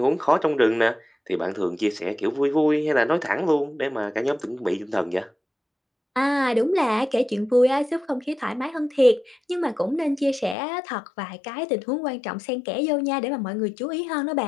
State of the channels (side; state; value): right; drops out; at 10.6 s